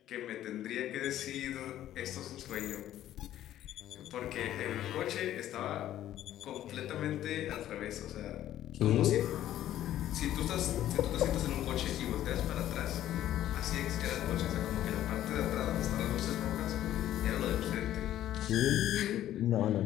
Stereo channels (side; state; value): right; quieter; 12.6 dB